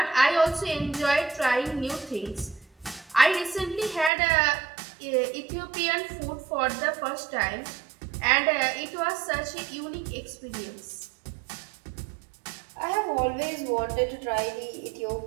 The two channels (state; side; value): drops out; left; at 4.1 s